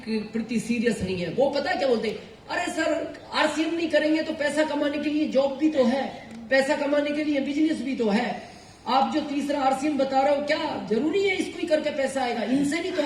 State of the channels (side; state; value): both; identical; correlation 1.00